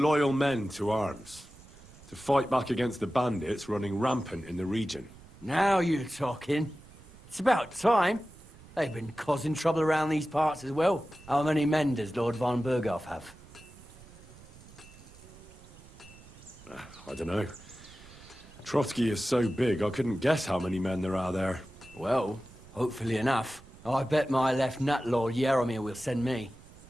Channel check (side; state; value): right; noise; rumble, 21 dB below the sound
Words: men to arms, to fight back against the bandits running rampant in the region. Now you're talking. It's about time. They've been causing trouble around these parts as well. How many men does Lord von Berghoff have? I don't know. Trotsky is so big, I couldn't guess how many men there are there. Well, hopefully enough. I bet my left nut Lord Yaromir will send me.